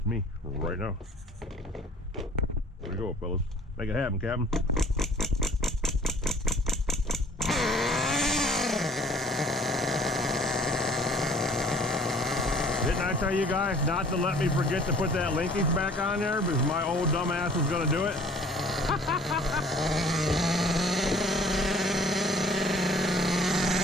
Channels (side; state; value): both; normal; correlation 0.53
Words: me right now. There we go, fellas. Make it happen, Captain. Didn't I tell you guys not to let me forget to put that linkage back on there because my old dumbass was going to do it?